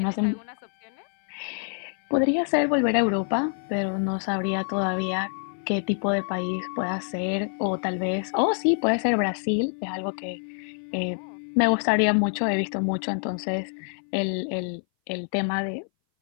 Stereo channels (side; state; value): right; silent; 59 dB below the other